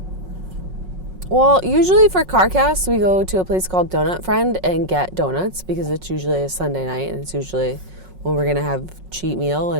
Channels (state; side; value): late; left; 5.4 ms